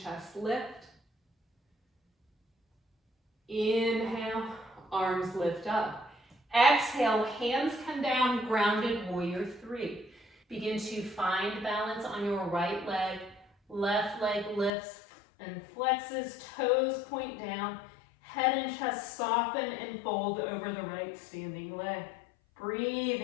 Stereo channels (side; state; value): right; drops out; at 14.7 s